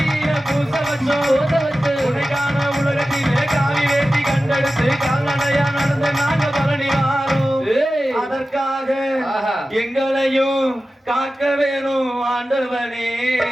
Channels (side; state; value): both; normal; correlation 0.94